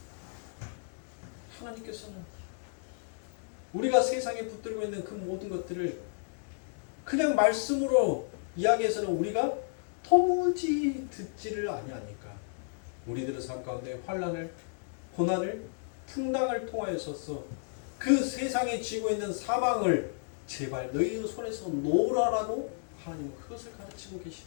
하나님께서는 우리가 세상에 붙들고 있는 그 모든 것들을 그냥 말씀으로 이야기해서는 우리가 도무지 듣지를 아니하니까 우리들의 삶 가운데 환난을, 고난을, 풍랑을 통하여서 그 세상에 쥐고 있는 사망을 제발 너희의 손에서 놓으라라고 하나님은 그것을 가르치고 계시는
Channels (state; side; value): silent; right; digital silence